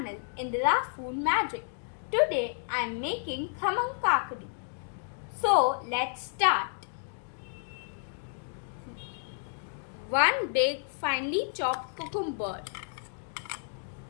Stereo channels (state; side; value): silent; right; digital silence